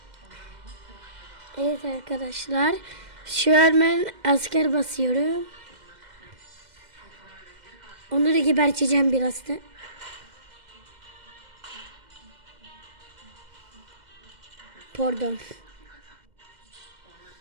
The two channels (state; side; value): late; left; 2.1 ms